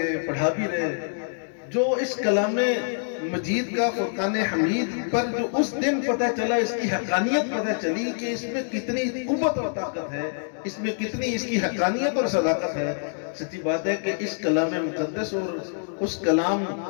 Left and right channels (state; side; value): silent; right; digital silence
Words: پڑھا بھی رہے. جو اس کلام مجید کا فرقان حمید پر جو اس دن پتہ چلا، اس کی حقانیت پتہ چلی کہ اس میں کتنی قوت اور طاقت ہے، اس میں کتنی اس کی حقانیت اور صداقت ہے. سچی بات ہے کہ اس کلام مقدس اور اس کلام